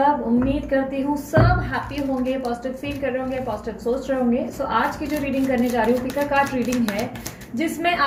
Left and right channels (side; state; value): both; identical; correlation 1.00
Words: उम्मीद करती हूँ सब हैप्पी होंगे, पॉजिटिव फील कर रहे होंगे, पॉजिटिव सोच रहे होंगे। सो आज की जो रीडिंग करने जा रही हूँ पिक अ कार्ड रीडिंग है, जिसमें